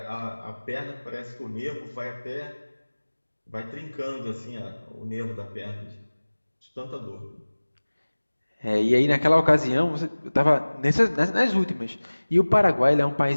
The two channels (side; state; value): both; inverted; correlation -1.00